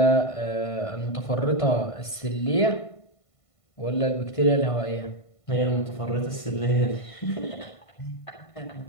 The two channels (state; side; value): late; right; 1.5 ms